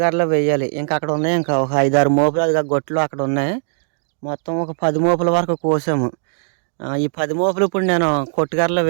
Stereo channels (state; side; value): silent; left; digital silence